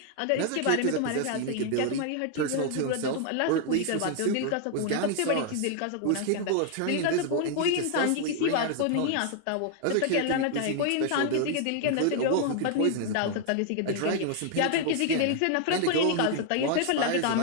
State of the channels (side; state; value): both; different; correlation 0.00